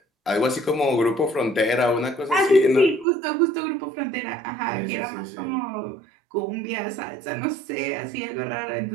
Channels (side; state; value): left; drops out; at 3.1 s